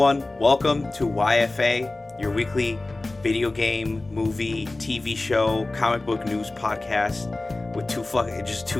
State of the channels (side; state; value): right; quieter; 3.0 dB